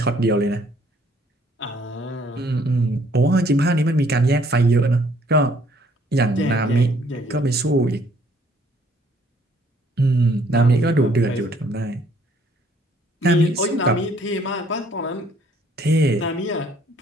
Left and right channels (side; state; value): both; normal; correlation 0.63